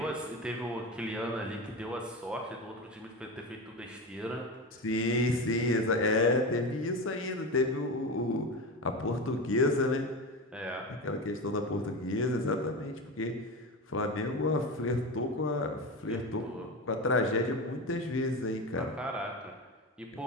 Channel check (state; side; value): normal; both; correlation 0.23